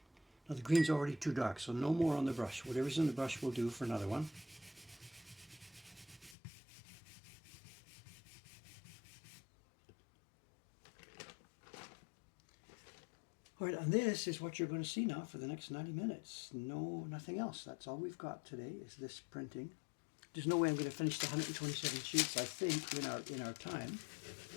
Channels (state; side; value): drops out; right; at 6.4 s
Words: Now the green's already too dark, so no more on the brush. Whatever's in the brush will do for another one. All right, and this is what you're going to see now for the next 90 minutes. No, nothing else. That's all we've got today is this printing. There's no way I'm going to finish the 127 sheets, I think, in our time.